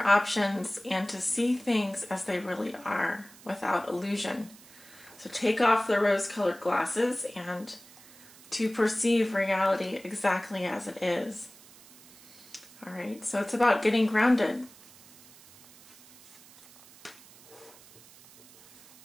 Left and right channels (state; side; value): noise; right; hiss, 23 dB below the sound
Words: options and to see things as they really are without illusion. So take off the rose-colored glasses and to perceive reality exactly as it is. All right, so it's about getting grounded.